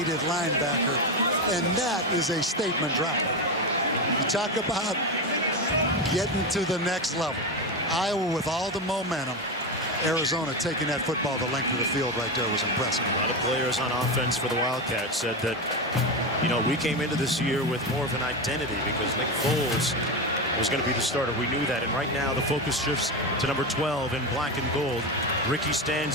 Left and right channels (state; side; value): normal; both; correlation 0.16